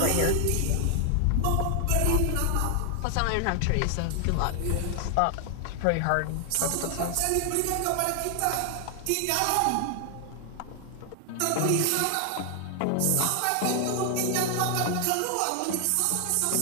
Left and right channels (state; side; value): different; both; correlation 0.00